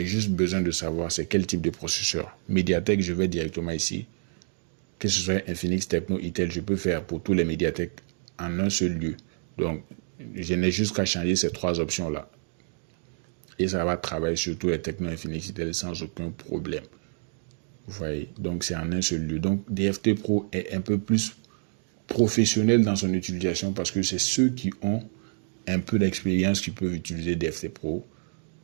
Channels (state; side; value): silent; left; digital silence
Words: juste besoin de savoir c'est quel type de processeur. Mediatek, je vais directement ici. Que ce soit Infinix, Techno, Itel, je peux faire pour tous les Mediatek en un seul lieu. Donc, je n'ai juste qu'à changer ces 3 options-là. Et ça va travailler sur tous les Techno, Infinix, Itel sans aucun problème. Vous voyez, donc c'est en un seul lieu. Donc, DFT Pro est un peu plus professionnel dans son utilisation parce que c'est ceux qui ont un peu d'expérience qui peuvent utiliser DFT Pro.